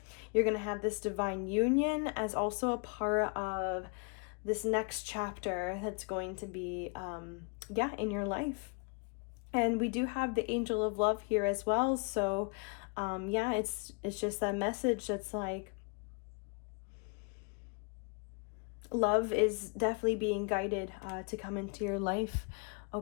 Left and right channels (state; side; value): quieter; right; 36.8 dB